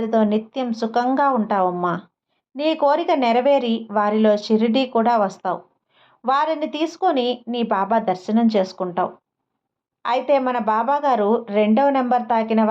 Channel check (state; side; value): identical; both; correlation 1.00